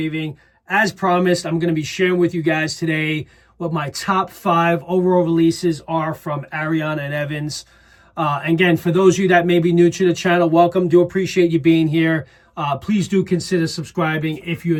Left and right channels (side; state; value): both; identical; correlation 1.00